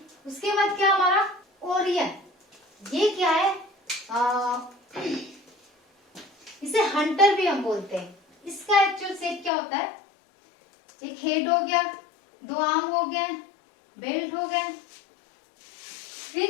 उसके बाद क्या हमारा ओरियन, ये क्या है, इसे हंटर भी हम बोलते हैं। इसका एक्चुअल शेप क्या होता है, एक हेड हो गया, 2 आर्म हो गए, बेल्ट हो गया,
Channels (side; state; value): right; drops out; at 9.5 s